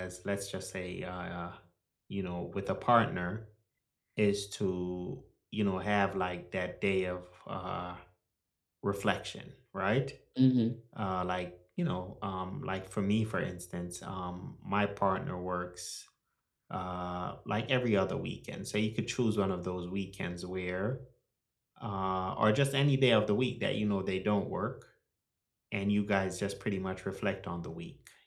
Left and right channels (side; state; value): both; identical; correlation 1.00